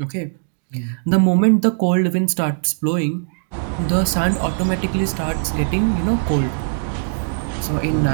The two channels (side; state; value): left; silent; digital silence